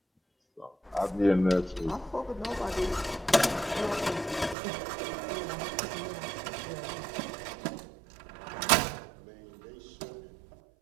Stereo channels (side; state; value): left; drops out; at 4.5 s